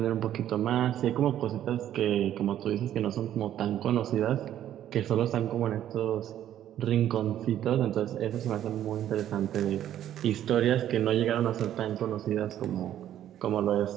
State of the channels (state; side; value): quieter; left; 11.4 dB